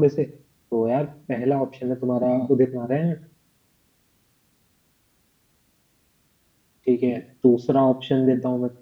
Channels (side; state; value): both; identical; correlation 1.00